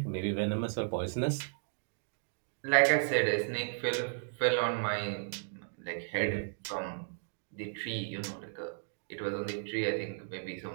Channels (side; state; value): left; silent; digital silence